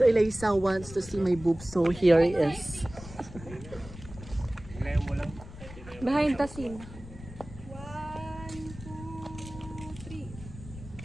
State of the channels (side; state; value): left; noise; rumble, 15 dB below the sound